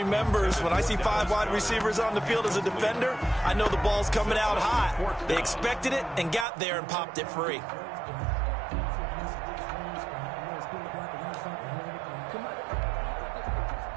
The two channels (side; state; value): left; drops out; at 6.5 s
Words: when I see 5 wide receivers on the field as a defender, I know the ball's coming out hot. They expected it and got there and popped it free.